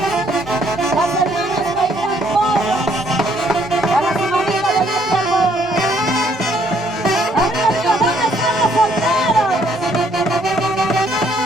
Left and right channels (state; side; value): normal; both; correlation 0.67